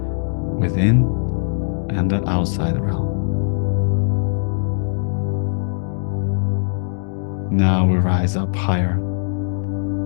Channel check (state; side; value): silent; right; digital silence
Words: within and the outside realm. Now we rise up higher